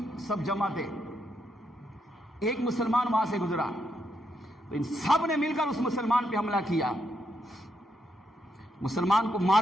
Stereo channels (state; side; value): normal; both; correlation 0.79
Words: سب جمع تھے. ایک مسلمان وہاں سے گزرا تو ان سب نے مل کر اس مسلمان پہ حملہ کیا. مسلمان کو